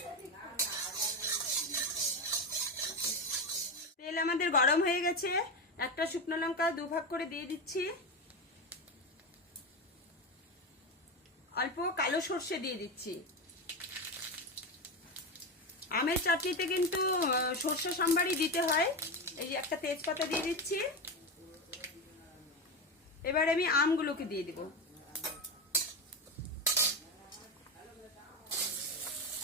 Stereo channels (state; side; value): normal; both; correlation 0.16